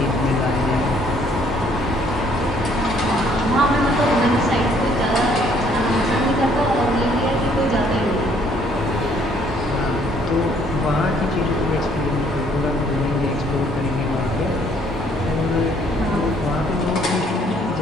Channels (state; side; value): normal; both; correlation 0.63